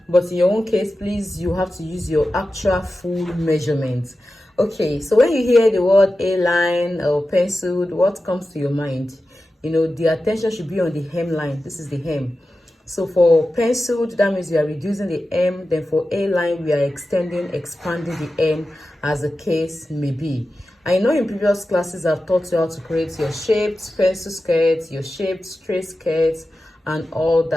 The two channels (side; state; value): both; normal; correlation 0.93